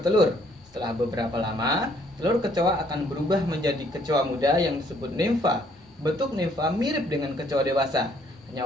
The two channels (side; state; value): both; normal; correlation 0.65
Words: Setelah beberapa lama, telur kecoa akan berubah menjadi kecoa muda yang disebut nimfa. Bentuk nimfa mirip dengan kecoa dewasa,